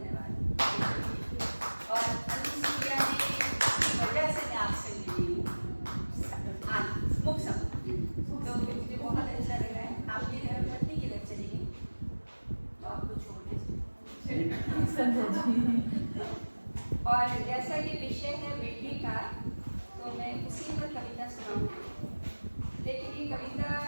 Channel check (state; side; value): inverted; both; correlation -1.00